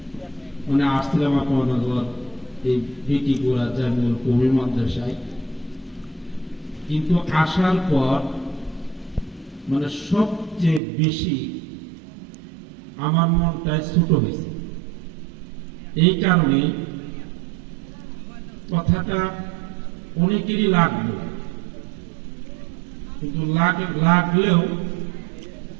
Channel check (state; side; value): drops out; left; at 10.8 s